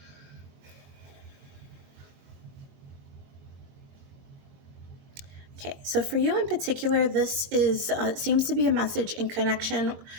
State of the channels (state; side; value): late; left; 22 ms